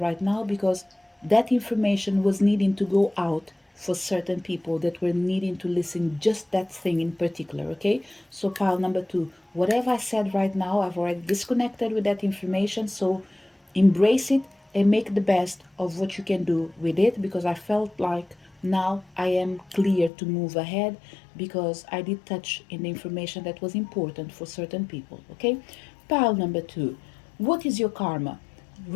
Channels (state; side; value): drops out; right; at 20.1 s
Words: now, because that information was needing to go out for certain people that were needing to listen just that thing in particular. Okay, so pile number 2, whatever I said right now, I've already disconnected with that information. So embrace it and make the best of what you can do with it, because I felt like now I am clear to move ahead, because I did touch in the information that was important for certain people. Okay, pile number 2, what is your karma?